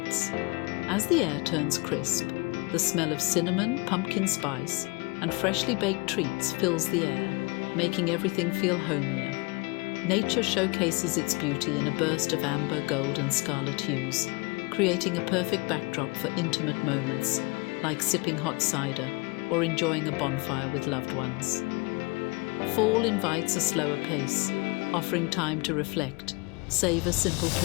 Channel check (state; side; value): quieter; right; 27.8 dB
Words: As the air turns crisp, the smell of cinnamon, pumpkin spice, and freshly baked treats fills the air, making everything feel homier. Nature showcases its beauty in a burst of amber, gold, and scarlet hues, creating a perfect backdrop for intimate moments like sipping hot cider or enjoying a bonfire with loved ones. Fall invites a slower pace, offering time to reflect, savor simple